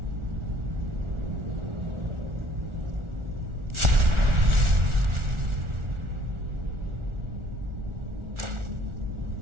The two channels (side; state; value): left; late; 1.4 ms